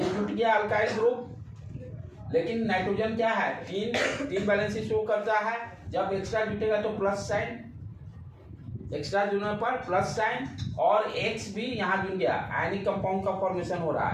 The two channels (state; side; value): identical; both; correlation 1.00